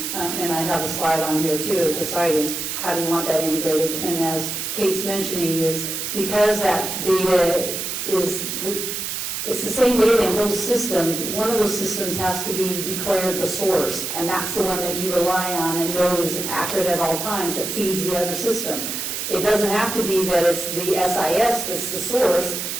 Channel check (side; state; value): right; noise; hiss, 4 dB below the sound